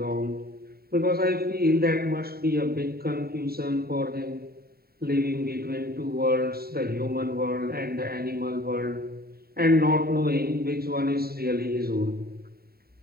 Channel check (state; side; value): late; left; 0.45 ms